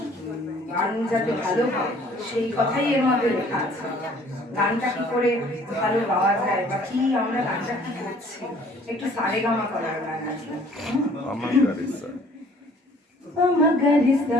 গান যাতে ভালো হয় সেই কথাই এর মধ্যে লেখা আছে। গানটা কি করে ভালো গাওয়া যায় বা কি আমরা গানটা কি করছি, একটু সারেগামা করার গান আছে।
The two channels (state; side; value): normal; both; correlation 0.56